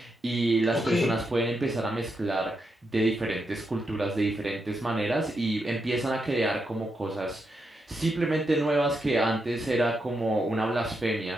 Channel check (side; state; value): both; normal; correlation 0.83